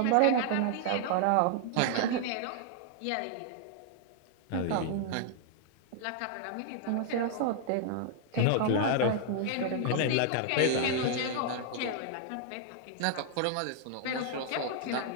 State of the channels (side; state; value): both; different; correlation -0.01